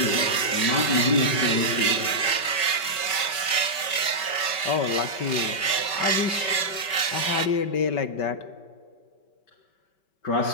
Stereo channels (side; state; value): right; late; 5.2 ms